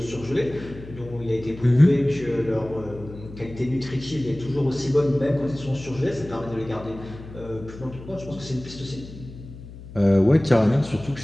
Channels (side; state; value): left; noise; hum, 15 dB below the sound